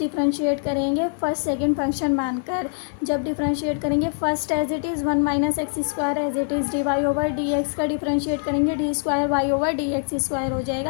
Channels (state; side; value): silent; right; 63 dB below the other